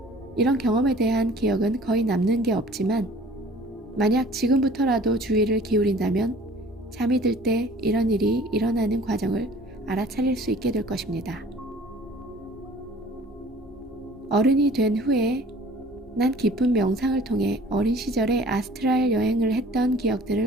이런 경험에 대한 기억은 거의 남는 게 없지만 만약 지금부터라도 주의를 기울인다면 잠이 들 때 이런 일이 일어나는 과정을 알아차릴 수 있게 될 것입니다. 어른이 된 후에 난 깊은 명상을 통해 어린 시절에 아스트랄 여행을 했던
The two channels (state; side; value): normal; both; correlation 0.50